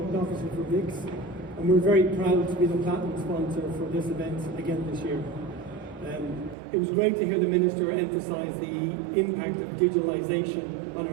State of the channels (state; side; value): drops out; left; at 6.6 s